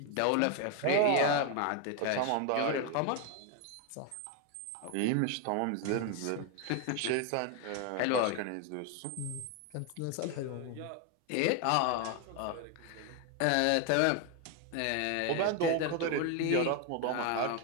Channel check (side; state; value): both; different; correlation 0.01